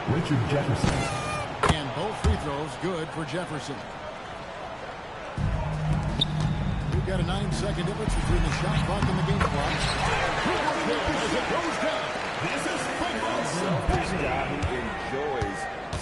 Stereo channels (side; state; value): both; identical; correlation 1.00